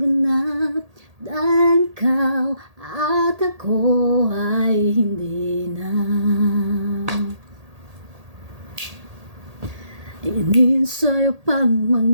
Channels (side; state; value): left; late; 1.8 ms